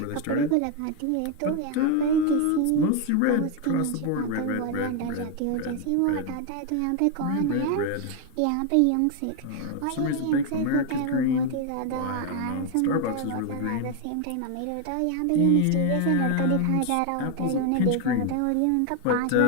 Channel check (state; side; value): different; both; correlation 0.01